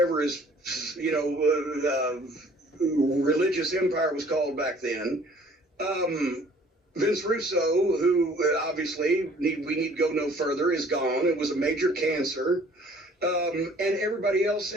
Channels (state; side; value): normal; both; correlation 0.55